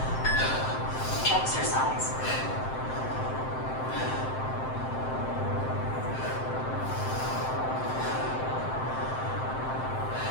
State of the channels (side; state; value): right; late; 7.7 ms